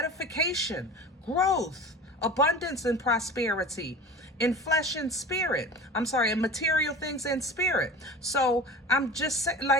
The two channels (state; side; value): normal; both; correlation 0.36